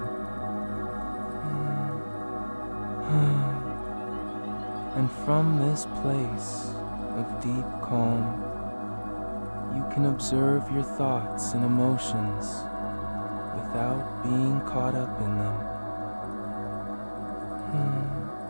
And from this place of deep calm, you can observe your thoughts and emotions without being caught up in them.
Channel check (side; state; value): both; inverted; correlation -1.00